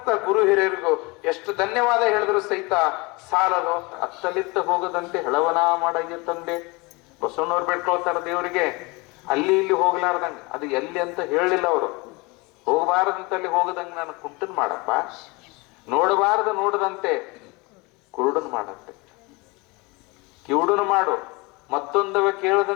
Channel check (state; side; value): quieter; right; 25.9 dB